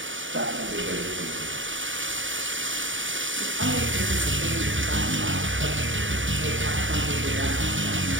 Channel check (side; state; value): left; late; 0.56 ms